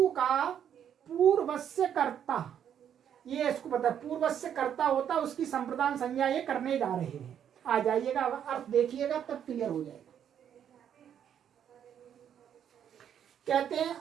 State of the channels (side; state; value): left; quieter; 9.1 dB